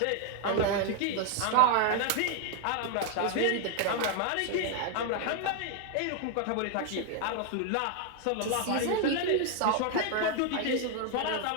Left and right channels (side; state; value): both; different; correlation 0.00